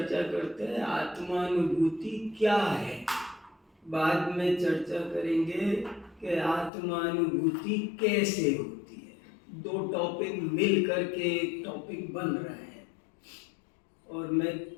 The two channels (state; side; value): drops out; right; at 6.7 s